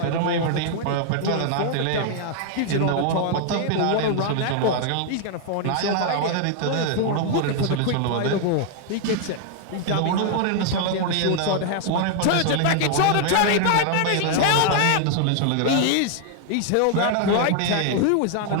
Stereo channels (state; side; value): different; both; correlation 0.00